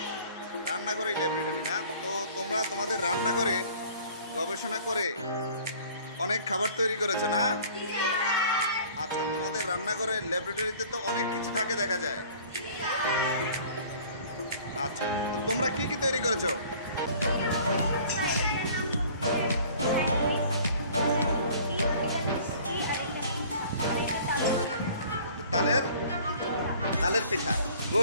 রান্নাঘরে ল্যাবরেটরি না? তো তোমরা তোমাদের রান্নাঘরে গবেষণা করে অনেক খাবার তৈরি করেছো না? আচ্ছা, তোমাদের রান্নাঘরে ল্যাবরেটরিতে তো অনেক কিছু থাকে দেখা যায়। আচ্ছা, তো তোমরা কি কি তৈরি করেছো? তালের পিঠা।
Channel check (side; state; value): both; inverted; correlation -0.50